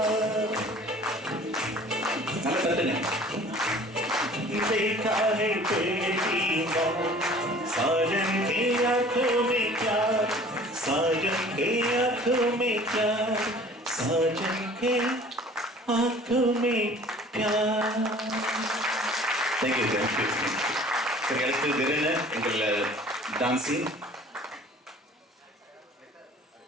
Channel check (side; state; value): both; normal; correlation 0.48